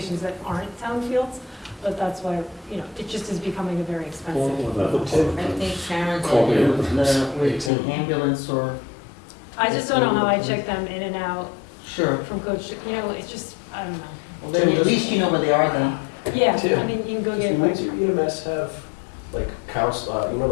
that aren't town fields. But that's why, you know, it just is becoming a very expensive. I think Karen said with the ambulance or. I just don't know how I check them in and out Sure. from coach, you know, it's just, I don't know. Well, then at least you know where they are then. Yeah, Tim, I mean, you can go Does get New like, Windsor EMS have, like, you know,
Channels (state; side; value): drops out; right; at 7.7 s